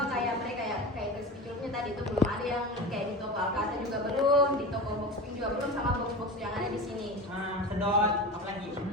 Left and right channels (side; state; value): both; normal; correlation 0.28